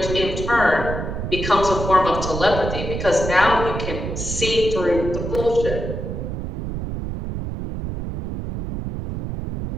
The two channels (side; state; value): right; noise; rumble, 5 dB below the sound